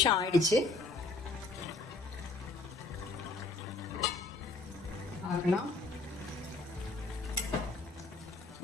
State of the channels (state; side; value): quieter; right; 3.4 dB